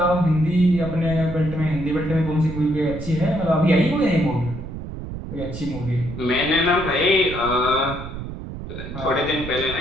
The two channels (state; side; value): noise; right; rumble, 9 dB below the sound